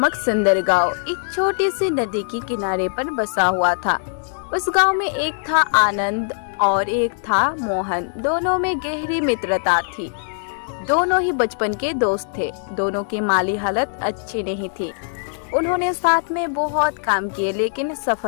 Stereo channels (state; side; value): silent; right; 65 dB below the other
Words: सुंदर गांव एक छोटी सी नदी के किनारे पर बसा हुआ था। उस गांव में एक था आनंद और एक था मोहन। दोनों में गहरी मित्रता थी। दोनों ही बचपन के दोस्त थे। दोनों की माली हालत अच्छी नहीं थी। उन्होंने साथ में बहुत काम किए लेकिन